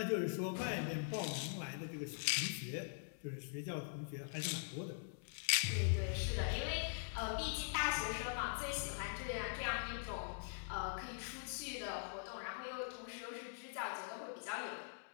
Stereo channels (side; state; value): right; silent; digital silence